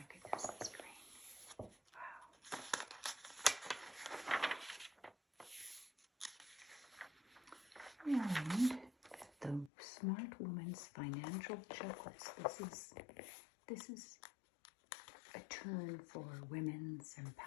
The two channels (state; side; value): drops out; right; at 9.7 s